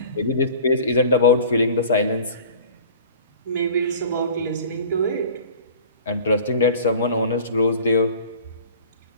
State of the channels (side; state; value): both; inverted; correlation -0.43